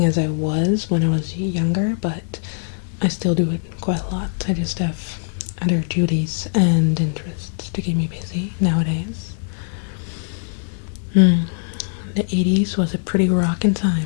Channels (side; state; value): right; silent; digital silence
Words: as I was when I was younger, but I still do it quite a lot. I just have other duties and interests to keep me busy nowadays. The 80s was a pretty rockin'